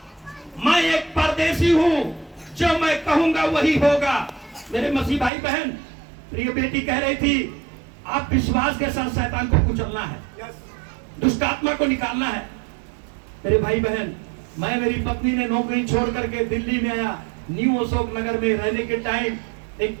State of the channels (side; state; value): left; drops out; at 5.3 s